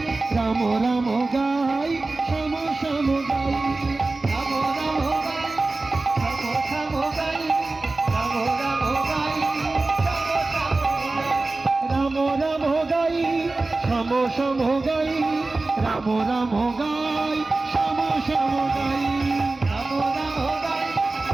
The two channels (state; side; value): quieter; left; 3.3 dB